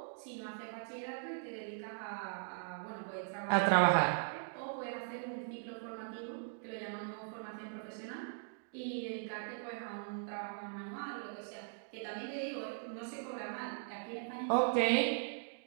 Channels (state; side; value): silent; left; digital silence